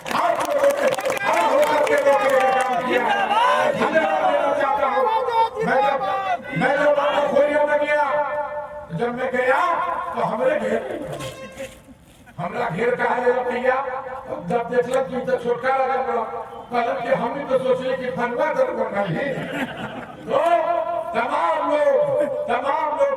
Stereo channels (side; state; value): both; identical; correlation 1.00